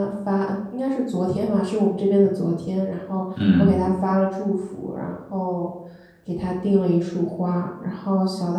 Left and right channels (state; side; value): identical; both; correlation 1.00